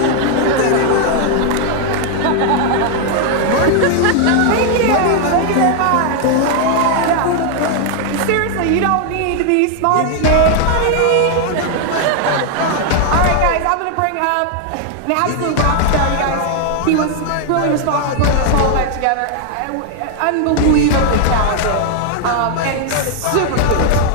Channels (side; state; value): both; different; correlation 0.00